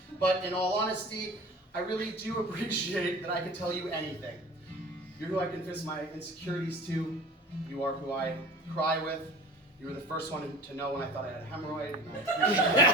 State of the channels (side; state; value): both; normal; correlation 0.39